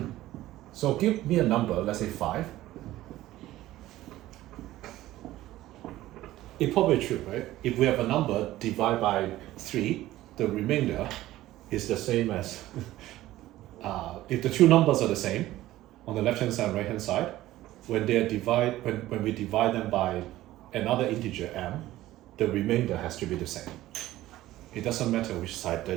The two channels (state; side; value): quieter; left; 15.5 dB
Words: So give me a number, let's say 5. It's probably true, right? If we have a number divided by 3, the remainder is the same as if the two numbers are the same, on the left-hand side and right-hand side, when we divide them by another integer m, the remainder has to be the same. It doesn't matter which side